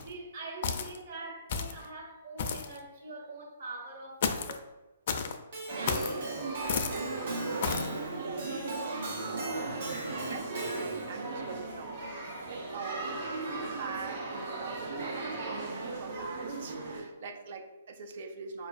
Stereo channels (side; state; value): both; inverted; correlation -0.56